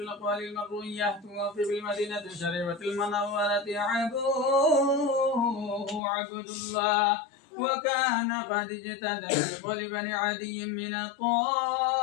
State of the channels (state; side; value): drops out; right; at 6.0 s